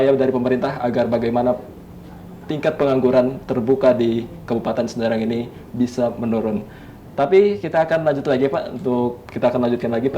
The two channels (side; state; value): both; identical; correlation 1.00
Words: dari pemerintah agar bagaimana tingkat pengangguran terbuka di Kabupaten Serang ini bisa menurun. Tapi kita akan lanjut lagi Pak, kita akan lanjutkan lagi